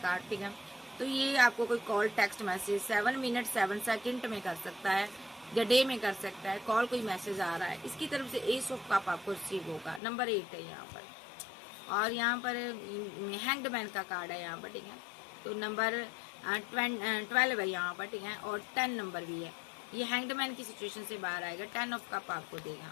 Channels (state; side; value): drops out; right; at 10.0 s